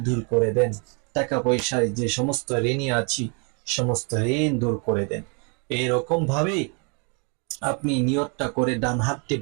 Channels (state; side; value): quieter; left; 35.2 dB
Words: দূর করে দেন, টাকা পয়সায় যে সমস্ত ঋণী আছি সমস্ত ঋণ দূর করে দেন। এরকম ভাবে আপনি নিয়তটা করে ডান হাতটি